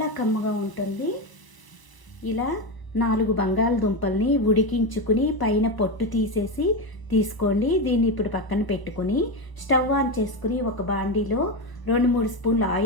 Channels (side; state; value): right; late; 1.0 ms